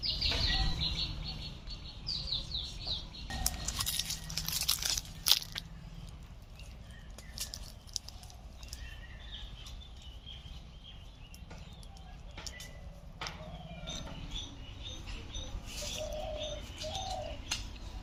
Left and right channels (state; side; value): identical; both; correlation 1.00